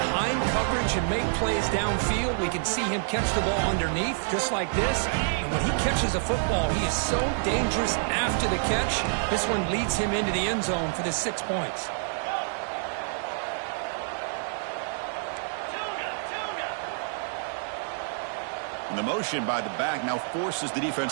coverage and make plays downfield. We can see him catch the ball underneath, just like this. And when he catches a football, he is so dangerous after the catch. This one leads him into the end zone for the 6 points. And the motion by the back now forces the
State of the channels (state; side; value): silent; left; digital silence